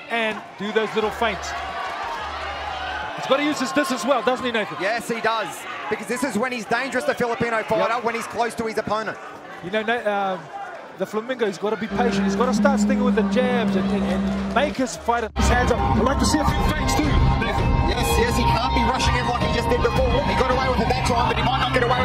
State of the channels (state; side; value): identical; both; correlation 1.00